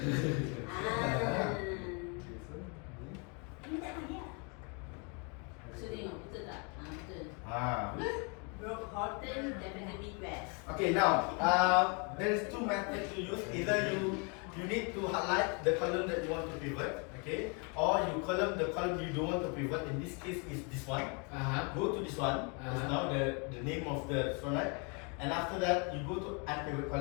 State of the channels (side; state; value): right; quieter; 34.4 dB